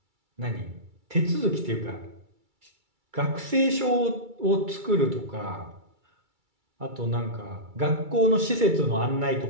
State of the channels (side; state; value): left; late; 2.3 ms